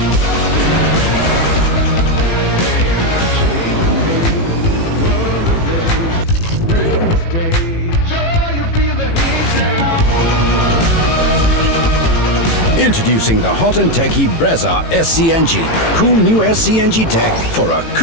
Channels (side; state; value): right; late; 18 ms